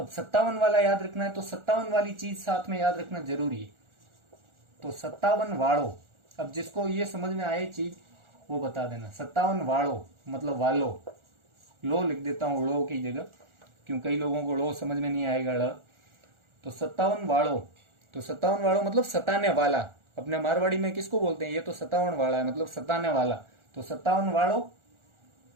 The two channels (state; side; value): late; left; 1.4 ms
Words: 57 वाला याद रखना है, तो 57 वाली चीज साथ में याद रखना जरूरी है। तो 57 वाड़ो, अब जिसको ये समझ में आए चीज वो बता देना। 57 वाड़ो मतलब वालो, लो लिख देता हूँ लो की जगह, क्यों कई लोगों को लो समझ में नहीं आएगा ड़। तो 57 वाड़ो, तो 57 वाड़ो मतलब सताने वाला। अपने मारवाड़ी में किसको बोलते हैं, ये तो 57 वाला है मतलब सताने वाला। तो 57 वाड़ो,